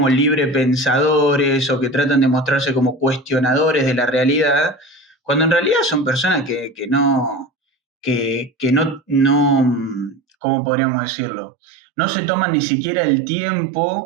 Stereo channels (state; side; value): drops out; left; at 10.2 s